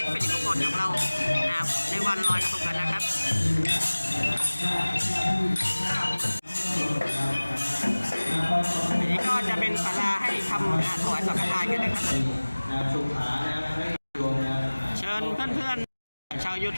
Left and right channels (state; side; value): inverted; both; correlation -1.00